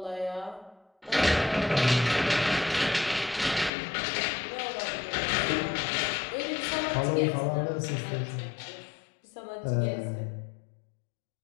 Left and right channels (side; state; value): right; drops out; at 3.7 s